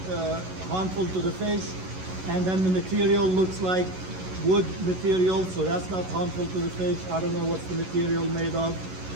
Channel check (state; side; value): late; left; 11 ms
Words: harmful to the fish. And then the material looks like wood material, so that's not harmful to the fish. I don't know what's the material made of,